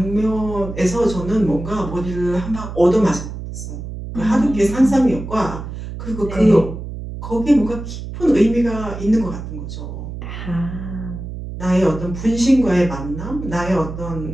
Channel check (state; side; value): noise; right; hum, 9 dB below the sound